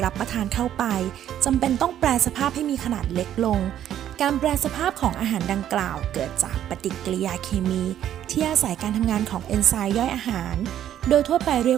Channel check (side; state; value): left; quieter; 11.0 dB